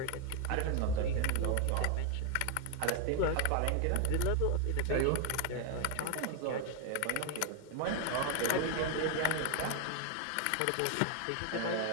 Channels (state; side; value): different; both; correlation 0.01